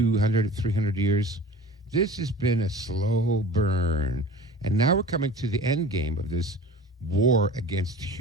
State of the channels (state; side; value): normal; both; correlation 0.40